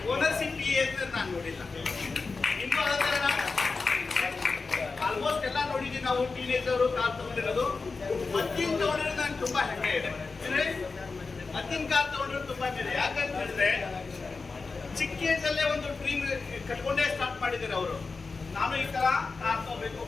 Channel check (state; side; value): quieter; right; 4.2 dB